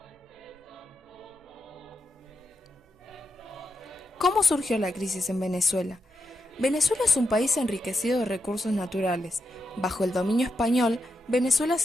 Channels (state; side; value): normal; both; correlation 0.85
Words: ¿Cómo surgió la crisis en Venezuela? Venezuela es un país enriquecido de recursos naturales. Bajo el dominio español, Venezuela